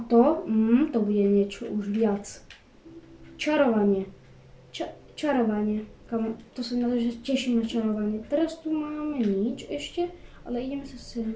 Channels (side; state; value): both; identical; correlation 1.00